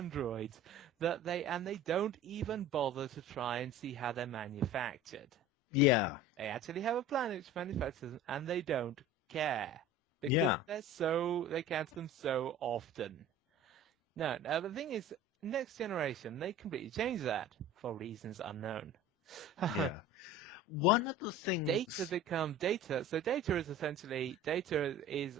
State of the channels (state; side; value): normal; both; correlation 0.39